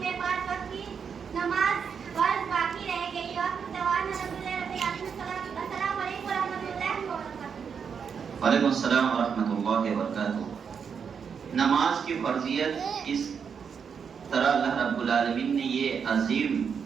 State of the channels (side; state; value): left; quieter; 6.7 dB